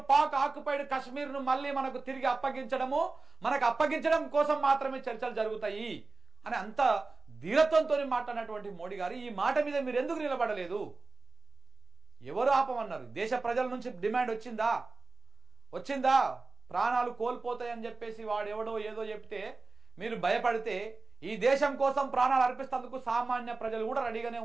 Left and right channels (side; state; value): left; quieter; 3.6 dB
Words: పాక్ ఆక్యుపైడ్ కశ్మీర్ను మళ్ళీ మనకు తిరిగి అప్పగించడం కోసం మాత్రమే చర్చలు జరుగుతాయి అని అంత ధీరత్వంతో మాట్లాడినటువంటి మోడీ గారు ఈ మాట మీద మీరు ఎందుకు నిలబడలేదు? ఎవరు ఆపమన్నారు? దేశ ప్రజల నుంచి డిమాండ్ వచ్చిందా? ప్రాణాలు కోల్పోతాయని చెప్పేసి వాడెవడో ఏదో చెప్తే మీరు భయపడితే ఈ దేశం కోసం ప్రాణాలు అర్పిస్తేందుకు సామాన్య ప్రజలు కూడా రెడీగానే